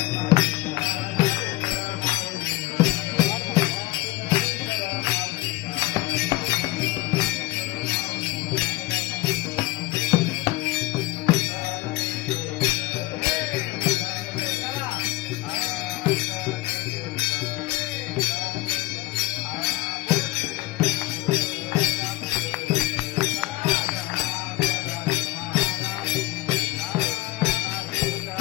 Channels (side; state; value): right; quieter; 18.3 dB